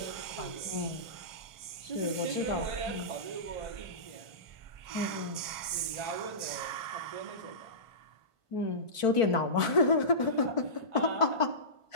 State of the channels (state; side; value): late; right; 1.5 ms